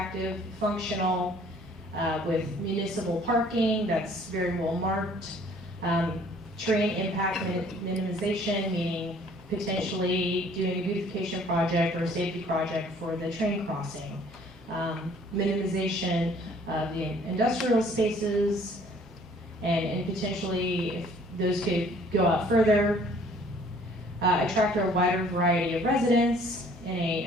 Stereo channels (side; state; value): both; normal; correlation 0.56